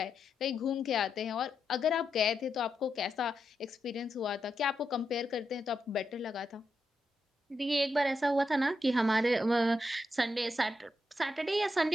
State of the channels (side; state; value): both; normal; correlation 0.84